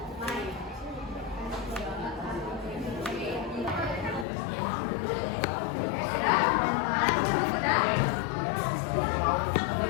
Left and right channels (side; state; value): right; drops out; at 4.2 s